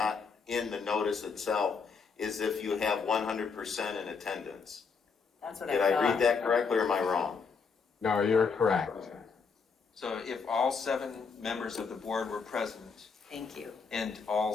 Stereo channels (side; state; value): right; quieter; 5.4 dB